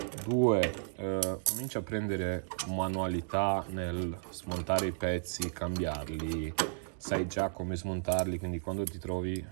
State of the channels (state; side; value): silent; left; digital silence